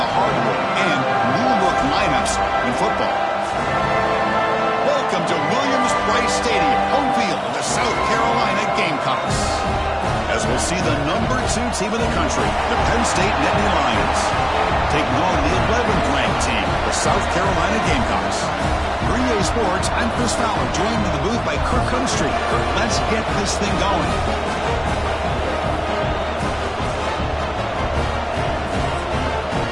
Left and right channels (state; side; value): identical; both; correlation 1.00